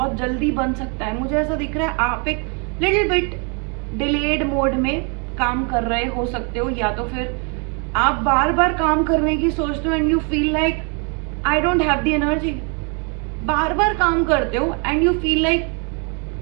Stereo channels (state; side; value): quieter; left; 36.5 dB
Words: जल्दी बन सकता है. मुझे ऐसा दिख रहा है आप एक लिटिल बिट डिलेड मोड में काम कर रहे हो सकते हो, या तो फिर आप बार बार काम करने की सोचते हो and you feel like I don't have the energy. बार बार काम करते हो and you feel like